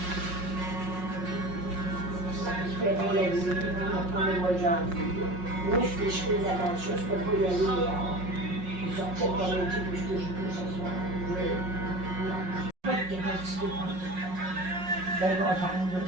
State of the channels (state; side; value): late; left; 5.5 ms